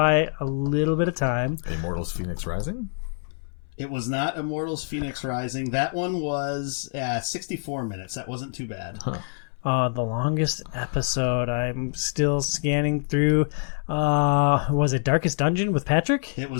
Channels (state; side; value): silent; right; 61 dB below the other